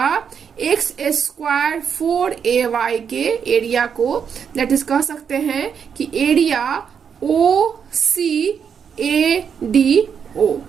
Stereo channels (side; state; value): left; quieter; 7.2 dB